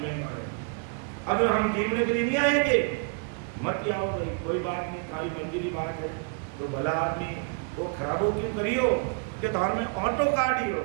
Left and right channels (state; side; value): quieter; left; 37.1 dB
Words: नहीं मारे, अब हम गिनने के लिए नहीं आएंगे, मत आओ भाई, कोई बात नहीं, खाली मंजिली बात है, तो भला आदमी वो खराबो क्यों करियो कि धार में ऑटो